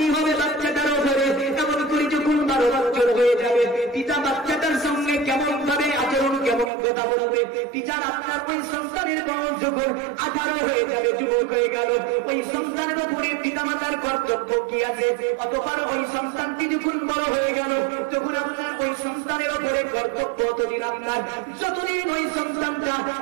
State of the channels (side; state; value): left; drops out; at 6.7 s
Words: হবে বাচ্চাটার উপরে, এমন করে যখন 12 বছর হয়ে যাবে পিতা বাচ্চাটার সঙ্গে কেমন ভাবে আচরণ কেমন কথা বলবে, পিতার আপনার ওই সন্তানের বয়স যখন 18 হয়ে যাবে যুবক হয়ে গেল ওই সন্তানের উপরে পিতামাতার কর্তব্য কি আছে, অতঃপর ওই সন্তানটি যখন বড় হয়ে গেল তখন আপনার ওই সন্তানের উপরে কর্তব্য অতদিন আপনার যতদিন ওই সন্তানটা